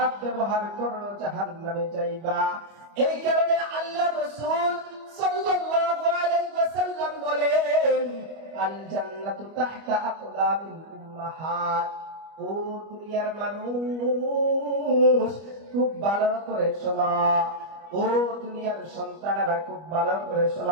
ব্যবহার করো জাহান্নামে যাইবা। এই কারণে আল্লাহ রাসূল সাল্লাল্লাহু আলাইহি ওয়াসাল্লাম বলেন, আল জান্নাতু তাহতা আকদামিল উম্মাহাত। ও দুনিয়ার মানুষ, খুব ভালো করে শোনা, ও দুনিয়ার সন্তানেরা খুব ভালো করে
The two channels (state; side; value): late; left; 25 ms